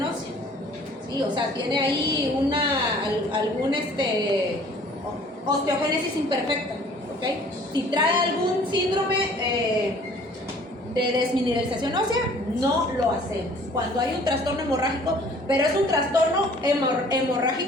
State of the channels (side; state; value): both; normal; correlation 0.53